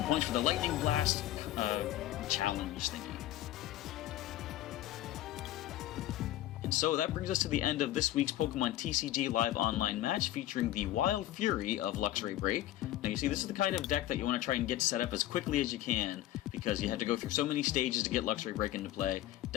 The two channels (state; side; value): quieter; right; 13.9 dB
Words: points for the Lightning Blast challenge thingy. And so that brings us to the end of this week's Pokemon TCG Live Online match featuring the Wild Fury of Luxray BREAK. Now you see, this is the kind of deck that you want to try and get set up as quickly as you can, because you have to go through so many stages to get Luxray BREAK into play.